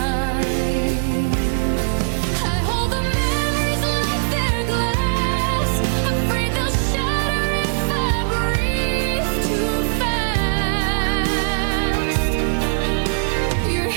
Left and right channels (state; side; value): silent; left; digital silence